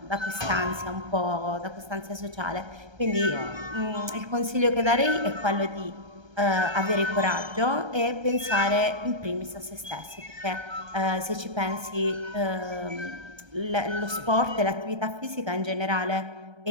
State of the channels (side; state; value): left; late; 1.3 ms